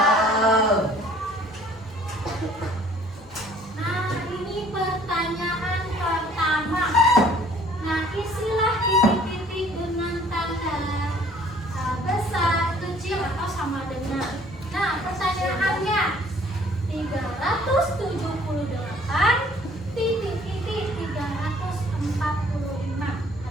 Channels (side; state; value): both; normal; correlation 0.57